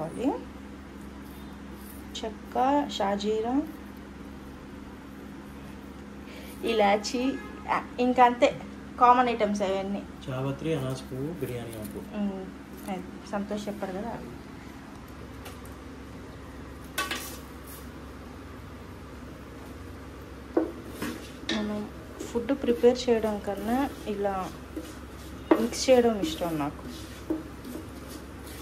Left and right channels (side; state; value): both; identical; correlation 1.00